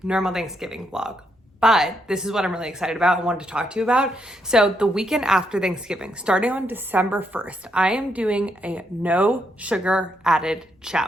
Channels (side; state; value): both; normal; correlation 0.78